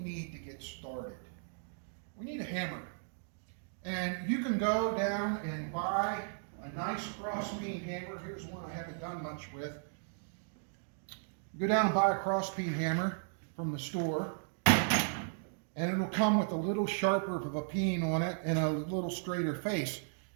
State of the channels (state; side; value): silent; left; digital silence